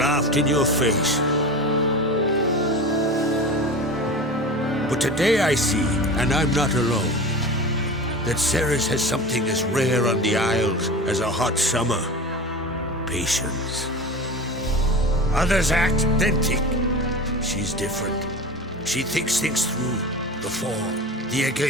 in your face. But today I see, and I'm not alone, that Ceres has something as rare on the Isles as a hot summer. Patience. Others act, then think. She's different. She thinks things through, the for, the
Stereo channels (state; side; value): normal; both; correlation 0.32